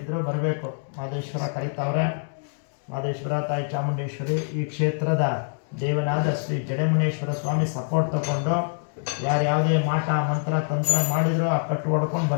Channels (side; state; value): right; silent; digital silence